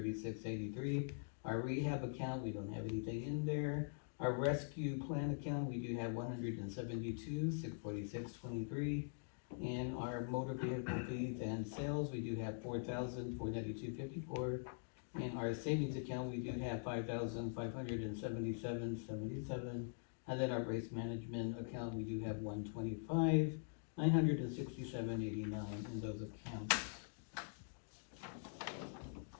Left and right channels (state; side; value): silent; right; digital silence